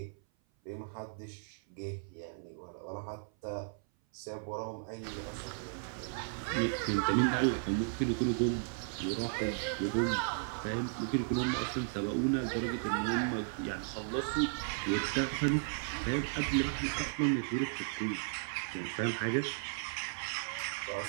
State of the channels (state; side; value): silent; left; 54 dB below the other